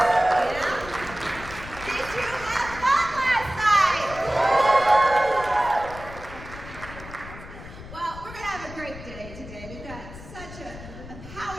Did you have fun last night? Well, we're going to have a great day today. We've got such a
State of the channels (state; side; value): noise; left; rumble, 14 dB below the sound